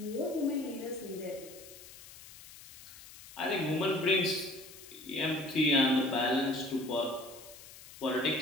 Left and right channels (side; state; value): left; noise; hiss, 18 dB below the sound